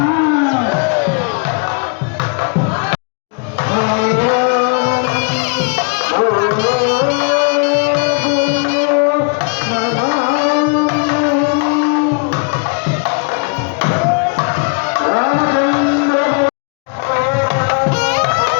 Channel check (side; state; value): right; quieter; 38.1 dB